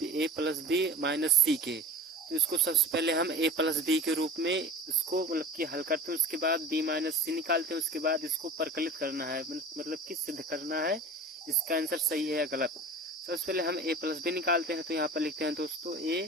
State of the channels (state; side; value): normal; both; correlation 0.37